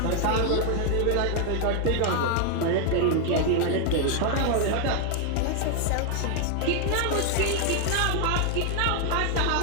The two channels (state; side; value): different; both; correlation 0.00